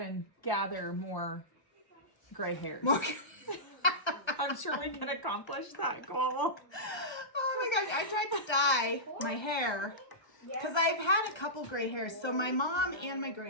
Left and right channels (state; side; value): late; right; 1.3 ms